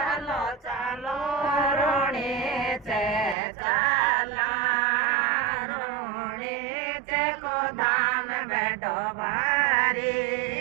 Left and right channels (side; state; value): left; drops out; at 3.4 s